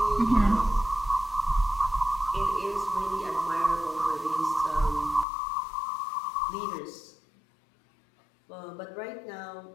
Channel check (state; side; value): drops out; right; at 5.2 s